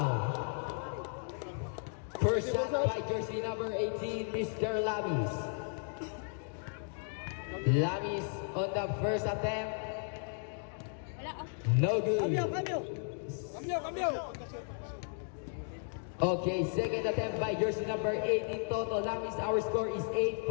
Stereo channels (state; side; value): silent; right; 55 dB below the other